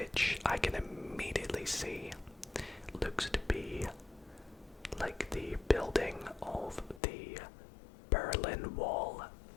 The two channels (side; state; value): right; drops out; at 7.0 s